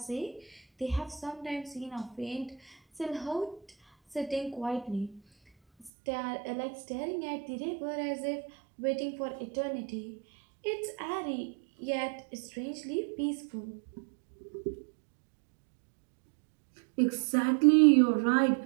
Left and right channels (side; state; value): left; drops out; at 5.9 s